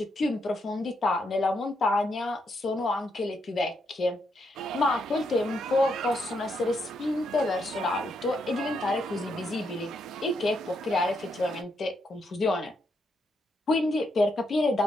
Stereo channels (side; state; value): both; normal; correlation 0.79